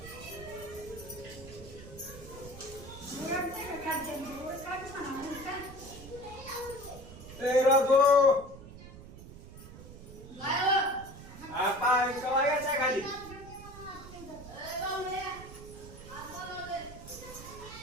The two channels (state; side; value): noise; right; rumble, 15 dB below the sound